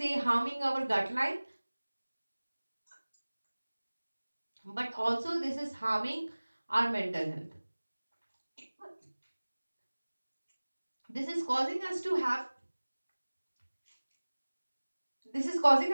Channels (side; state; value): both; inverted; correlation -1.00